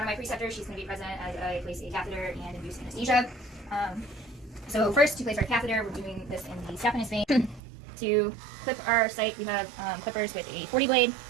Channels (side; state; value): left; drops out; at 7.6 s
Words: of my preceptors. She's going to be present as I place a catheter and induce anesthesia. So first, to place our catheter, we're doing this in the saphenous vein. To clip our site, we have clippers with a 40 blade.